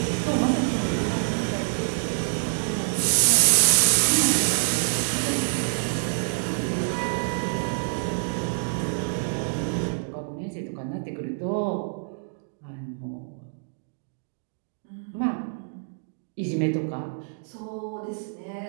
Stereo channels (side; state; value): left; silent; digital silence